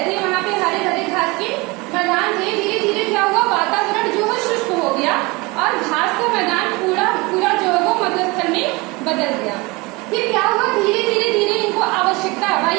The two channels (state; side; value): quieter; left; 24.8 dB